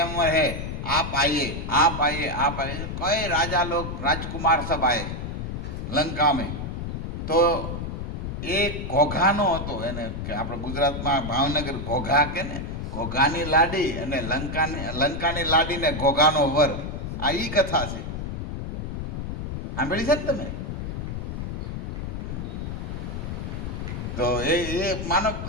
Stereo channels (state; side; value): noise; left; rumble, 5 dB below the sound